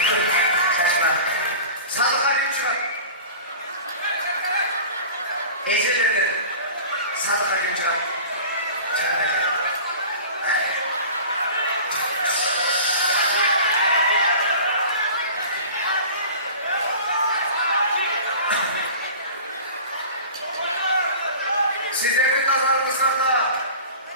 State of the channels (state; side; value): inverted; both; correlation -0.39